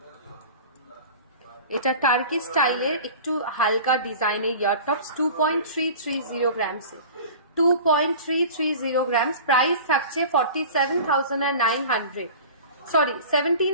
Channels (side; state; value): both; inverted; correlation -0.38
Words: এটা টার্কি স্টাইলের একটু হালকা ডিজাইনের ইয়ার টপস। 2.330 গ্রামসে। 2.330 গ্রামস। প্রাইস থাকছে 47,900। সরি